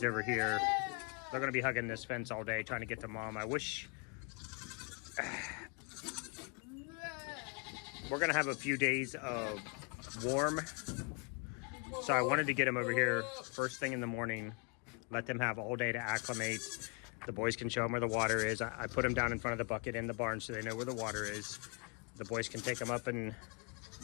over here. They're going to be hugging this fence all day, trying to get to mom. I wish... We're going to have a few days of warm. So I wanted to get them over here first thing in the morning, let them have all day to acclimate. The boys can show them where the water is. I put them down in front of the bucket in the barn so they know where the water is. The boys can take them up and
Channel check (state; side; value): quieter; right; 34.9 dB